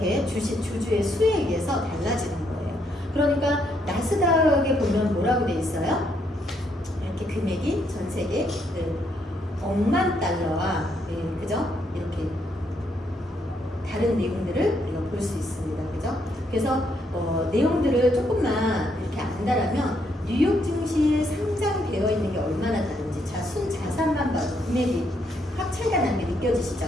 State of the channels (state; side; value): normal; both; correlation 0.74